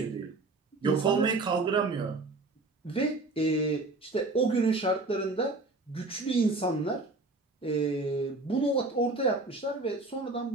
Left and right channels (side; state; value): left; quieter; 3.3 dB